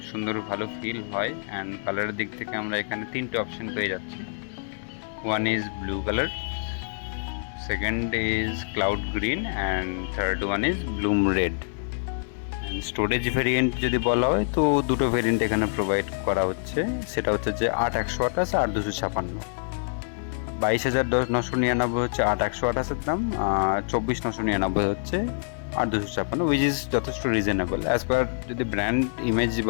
সুন্দর ভালো ফিল হয়। অ্যান্ড কালারের দিক থেকে আমরা এখানে তিনটে অপশন পেয়ে যাচ্ছি। One is blue colour, second is cloud green, and third one is Bloom red. Storage variant যদি বলা হয় তো দুটো ভেরিয়েন্ট এখানে প্রোভাইড করা হচ্ছে, সেটা হচ্ছে যে 8/128 আর 256। 22,999 হচ্ছে 8/128 দাম, আর 24,999 হচ্ছে 8/256, উইচ ইজ যথেষ্ট রিজনেবল অ্যাজ পার যদি ব্র্যান্ড ইমেজ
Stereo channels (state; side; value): silent; right; digital silence